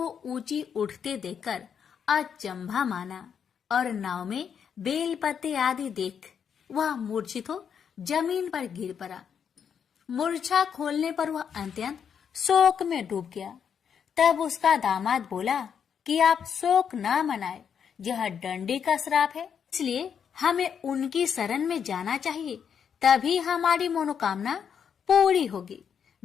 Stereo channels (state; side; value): quieter; right; 7.6 dB